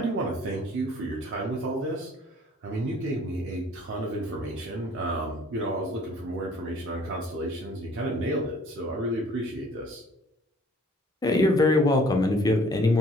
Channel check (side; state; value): both; normal; correlation 0.55